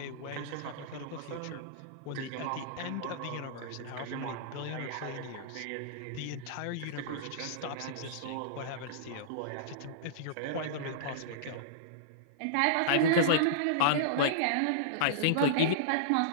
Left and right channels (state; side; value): different; both; correlation -0.03